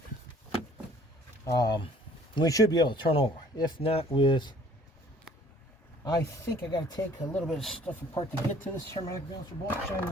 we should be able to turn over. If not with, I think I got to take a little bit of stuff apart to get to this harmonic balancer bolt. Shine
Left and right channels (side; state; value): both; normal; correlation 0.55